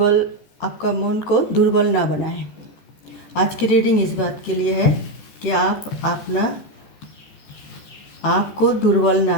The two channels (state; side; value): late; right; 14 ms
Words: आपका मन को दुर्बल ना बनाए। आज की रीडिंग इस बात के लिए है कि आप आपको दुर्बल